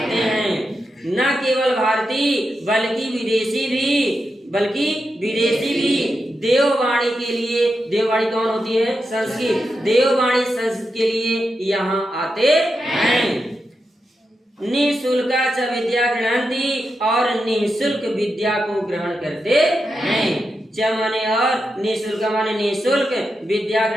हैं। न केवल भारतीय बल्कि विदेशी भी, बल्कि विदेशी भी देववाणी के लिए, देववाणी कौन होती है? संस्कृत, देववाणी संस्कृत के लिए यहाँ आते हैं। निःशुल्क च विद्या गृह्णन्ति, और निःशुल्क विद्या को ग्रहण करते हैं। च माने और, निःशुल्क माने निःशुल्क, विद्या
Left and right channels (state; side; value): normal; both; correlation 0.87